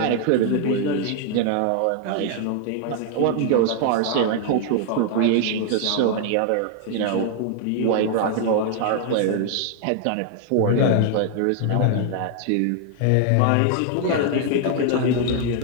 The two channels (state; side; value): different; both; correlation 0.00